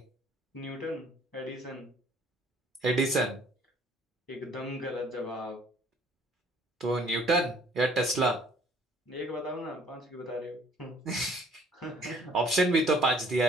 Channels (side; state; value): both; normal; correlation 0.57